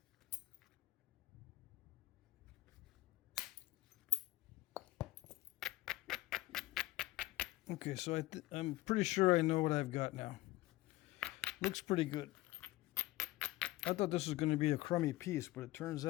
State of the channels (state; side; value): quieter; right; 18.2 dB